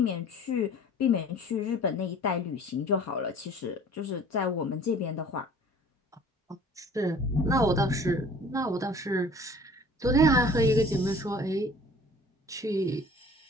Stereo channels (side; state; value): both; normal; correlation 0.48